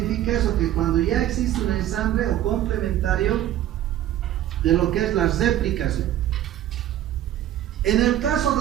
eso? Que cuando ya existe un ensamble o complementario de lo que es la replicación. En el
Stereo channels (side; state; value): left; quieter; 12.4 dB